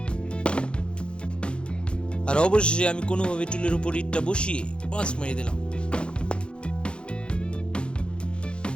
আর অবশেষে আমি কোনোভাবে টুলের উপর ইটটা বসিয়ে পাঁচ মারিয়ে দিলাম।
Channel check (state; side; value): late; right; 0.055 ms